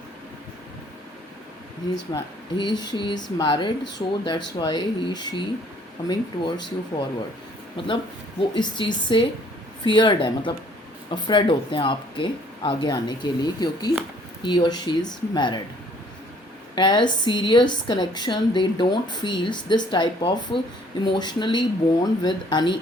She is married, so that's why she coming towards you forward। मतलब वो इस चीज़ से feared है, मतलब अफ्रेड होते हैं आपके आगे आने के लिए, क्योंकि he or she is married। As serious connection they don't feel this type of emotionally bond with any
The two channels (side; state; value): both; normal; correlation 0.60